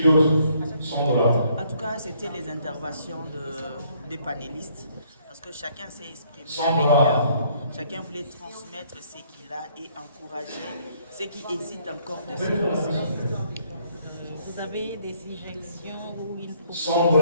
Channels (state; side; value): inverted; both; correlation -0.66